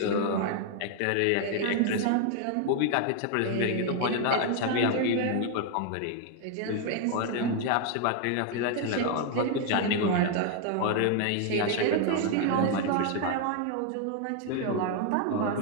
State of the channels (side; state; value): both; different; correlation 0.00